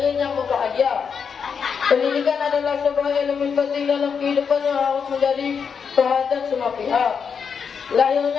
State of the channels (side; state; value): right; quieter; 6.4 dB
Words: yang berbahagia, pendidikan adalah sebuah elemen penting dalam kehidupan yang harus menjadi perhatian semua pihak.